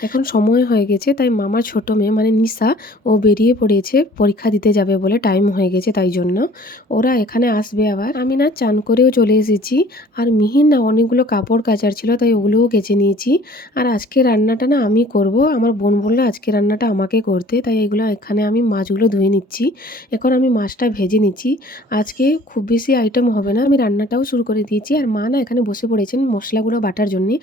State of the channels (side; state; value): both; normal; correlation 0.52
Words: এখন সময় হয়ে গেছে তাই মামার ছোট মেয়ে মানে নিশা ও বেরিয়ে পড়েছে পরীক্ষা দিতে যাবে বলে, টাইম হয়ে গেছে তাই জন্য। ওরা এখানে আসবে আবার। আমি না চান করেও চলে এসেছি আর মিহির না অনেকগুলো কাপড় কাচার ছিল তাই ওগুলোও কেচে নিয়েছি। আর আজকে রান্নাটা না আমি করব, আমার বোন বললো আজকে রান্নাটা আমাকে করতে, তাই এগুলো এখানে আমি মাছগুলো ধুয়ে নিচ্ছি। এখন আমি মাছটা ভেজে নিচ্ছি। আজকে খুব বেশি আইটেম হবে না, আমি রান্নাটাও শুরু করে দিয়েছি। আর মা না এখানে বসে পড়েছেন মশলাগুলো বাটার জন্যে,